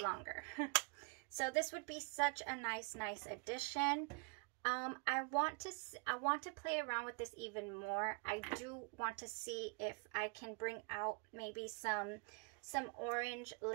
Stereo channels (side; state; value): left; quieter; 32.0 dB